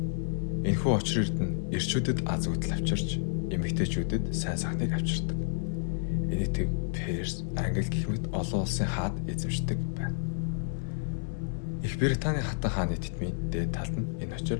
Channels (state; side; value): silent; right; digital silence